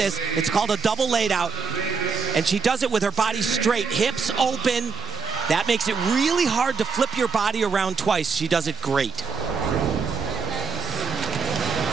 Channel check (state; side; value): quieter; left; 5.0 dB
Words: it's called a double laid out, and she does it with her body straight, hips open. That makes it really hard to flip your body around twice. She does it great.